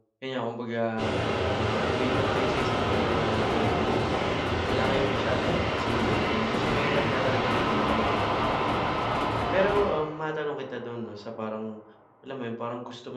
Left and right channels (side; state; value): both; identical; correlation 1.00